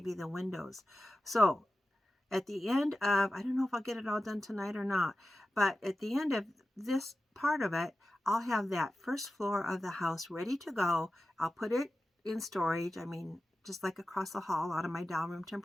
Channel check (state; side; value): normal; both; correlation 0.93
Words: the windows. So at the end of, I don't know if I'll get it all done tonight or not, but at the end of this part of it, I'll have that first floor of the house ready to go. I'll put it in storage. I mean, just like across the hall out of my doll room